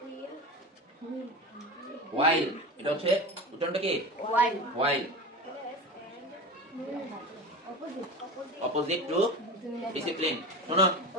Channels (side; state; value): both; normal; correlation 0.29